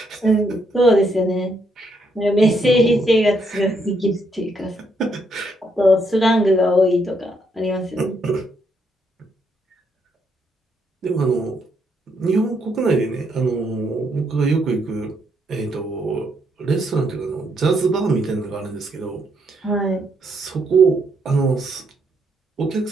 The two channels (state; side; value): normal; both; correlation 0.75